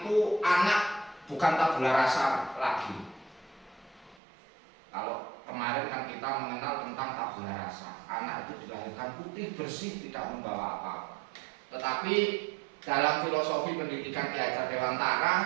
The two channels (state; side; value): drops out; left; at 4.2 s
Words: anak bukan tabula rasa lagi. Kalau kemarin kan kita mengenal tentang tabula rasa, anak itu dilahirkan putih bersih, tidak membawa apa-apa. Tetapi dalam filosofi pendidikan Ki Hajar